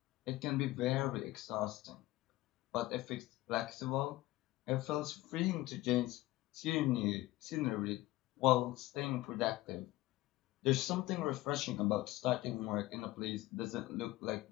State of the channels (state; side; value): quieter; right; 17.8 dB